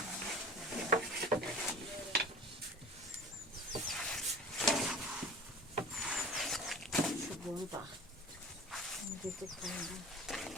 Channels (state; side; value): normal; both; correlation 0.39